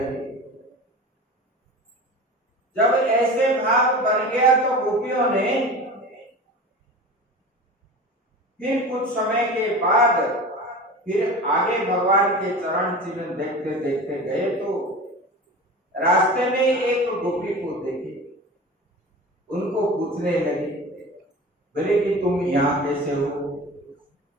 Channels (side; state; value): both; normal; correlation 0.33